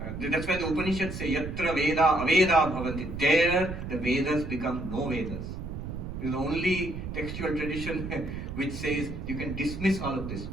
That's why the Upanishads say, Yatra Veda Aveda Bhavanti. There, the Vedas become no Vedas. This is the only textual tradition which says you can dismiss all of this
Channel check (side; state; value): right; noise; rumble, 7 dB below the sound